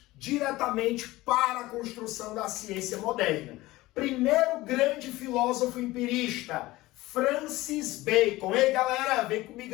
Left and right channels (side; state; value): right; quieter; 18.7 dB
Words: diretamente para a construção da ciência moderna. Primeiro grande filósofo empirista, Francis Bacon. Ei, galera, vem